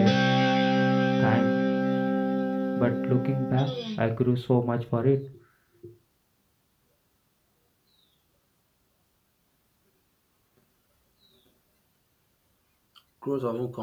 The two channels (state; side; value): identical; both; correlation 1.00